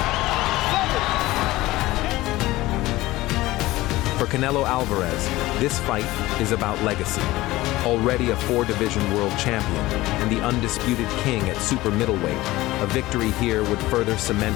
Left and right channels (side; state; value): right; quieter; 18.1 dB